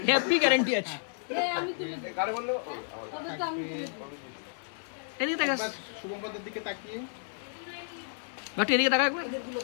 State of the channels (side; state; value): right; silent; digital silence